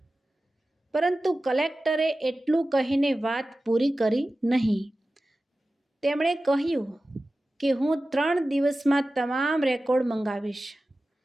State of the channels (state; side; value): normal; both; correlation 0.95